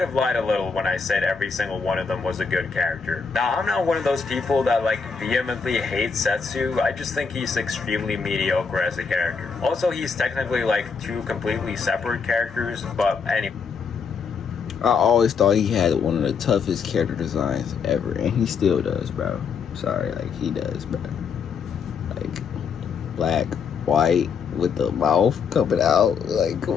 have lied a little when I said every single one of them was a good character. Now, I'm not one of those people that like vehemently hate Setsu. I just think he's extremely mediocre as a character. Also, he's technically like two completely separate characters, but anyway. I always thought he had one of the toughest character designs ever, and he still does, bro. Sorry, like, he does, bro. Like, black, white, with the mouth coming out. Like, come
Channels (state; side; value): quieter; right; 5.7 dB